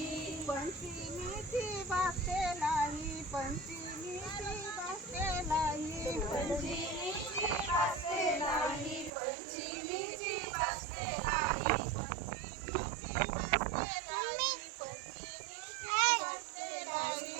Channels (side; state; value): left; drops out; at 9.1 s